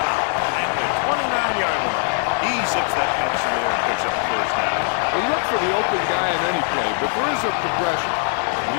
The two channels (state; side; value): silent; right; digital silence